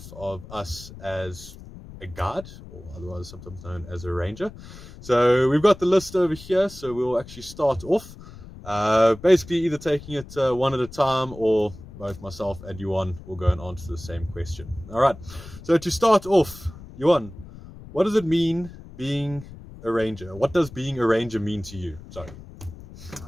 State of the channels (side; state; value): left; noise; rumble, 16 dB below the sound